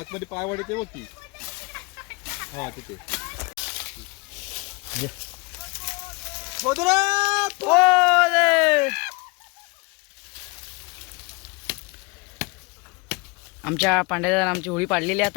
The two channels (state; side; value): quieter; right; 27.8 dB